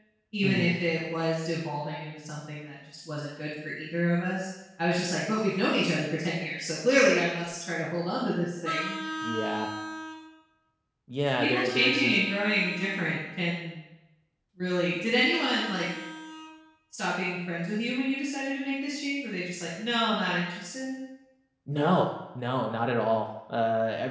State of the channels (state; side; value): identical; both; correlation 1.00